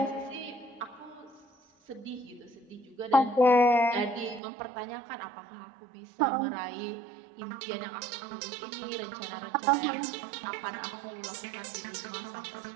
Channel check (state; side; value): drops out; left; at 4.4 s